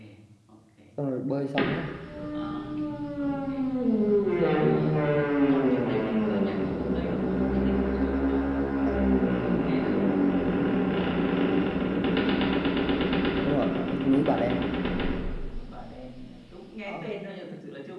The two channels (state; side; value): identical; both; correlation 1.00